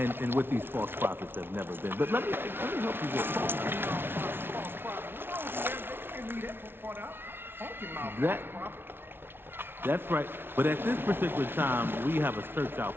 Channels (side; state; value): left; late; 0.11 ms